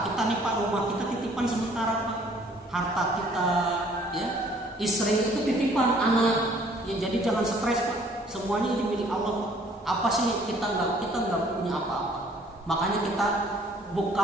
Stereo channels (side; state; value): both; normal; correlation 0.58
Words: kita nih Pak, rumah kita titipan sementara Pak. Harta kita, ya, istri itu titipan, anak. Ya jadi jangan stres Pak. Semuanya ini milik Allah Pak. Apa sih kita nggak punya apa-apa. Makanya kita